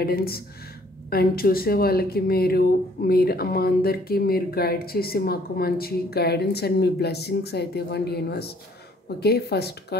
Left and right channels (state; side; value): normal; both; correlation 0.61